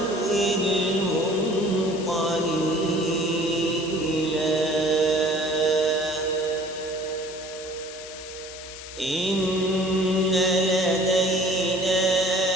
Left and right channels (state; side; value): noise; left; hiss, 13 dB below the sound